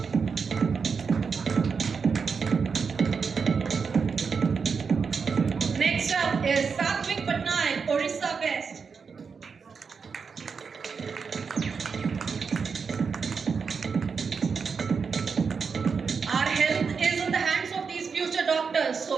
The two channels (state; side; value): quieter; left; 5.6 dB